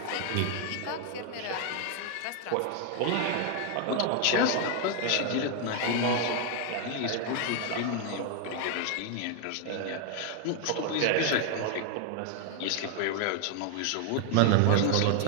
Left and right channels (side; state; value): both; different; correlation 0.00